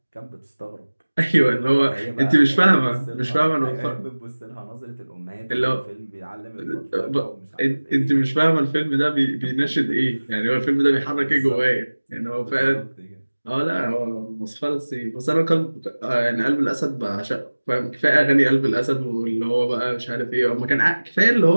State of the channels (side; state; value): both; inverted; correlation -1.00